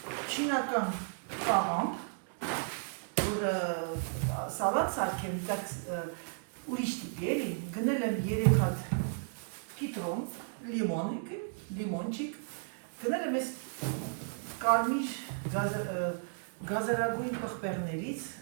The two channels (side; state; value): left; silent; 55 dB below the other